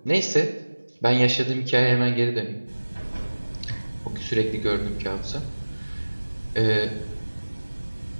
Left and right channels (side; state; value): both; inverted; correlation -1.00